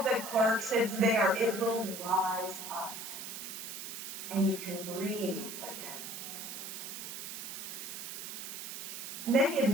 it, Clerks, it's there. It will rise up. And you can breathe again. Many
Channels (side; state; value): right; noise; hiss, 7 dB below the sound